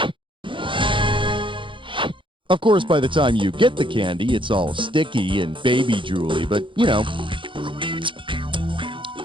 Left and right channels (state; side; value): late; left; 0.24 ms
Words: Of course, by the time you get the candy, it's all sticky and baby drooly, but, you know,